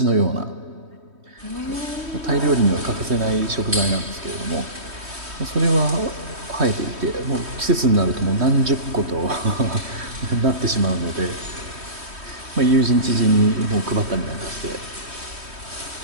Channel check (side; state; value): left; late; 3.2 ms